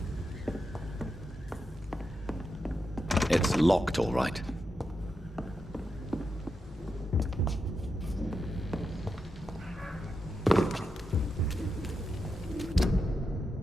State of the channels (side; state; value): both; normal; correlation 0.86